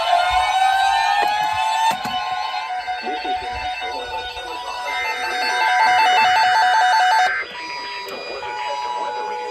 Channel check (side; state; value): both; identical; correlation 1.00